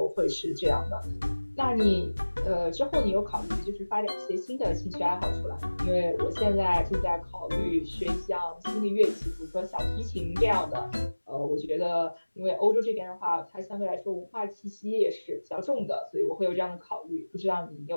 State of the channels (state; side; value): inverted; both; correlation -1.00